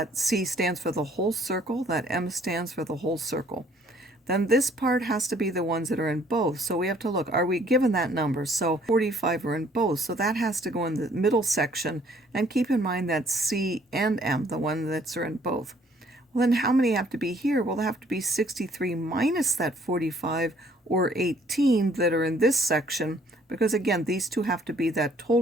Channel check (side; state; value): both; normal; correlation 0.60